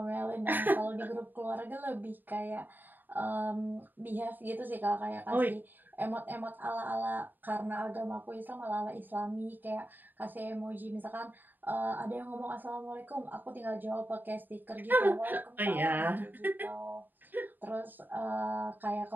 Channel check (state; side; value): late; left; 0.087 ms